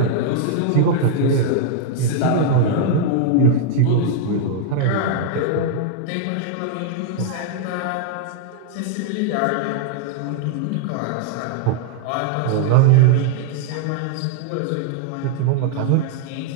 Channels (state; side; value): different; both; correlation -0.01